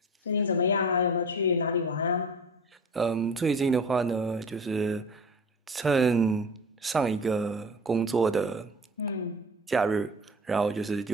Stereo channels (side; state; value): both; normal; correlation 0.38